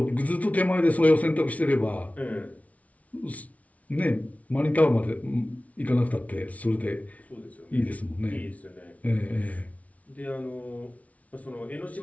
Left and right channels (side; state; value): right; late; 0.068 ms